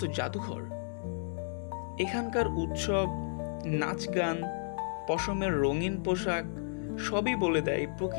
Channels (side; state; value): right; silent; digital silence